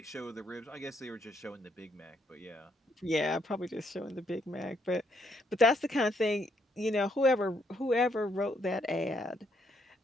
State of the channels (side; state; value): both; normal; correlation 0.73